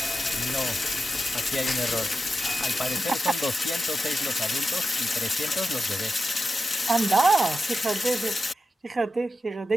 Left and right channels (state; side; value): normal; both; correlation 0.91